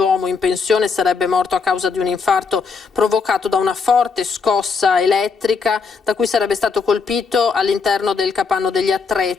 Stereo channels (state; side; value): quieter; right; 5.0 dB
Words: in pensione sarebbe morto a causa di un infarto provocato da una forte scossa elettrica da cui sarebbe stato colpito all'interno del capanno degli